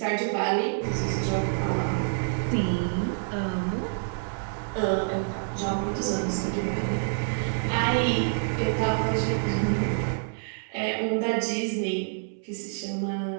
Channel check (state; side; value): silent; left; 60 dB below the other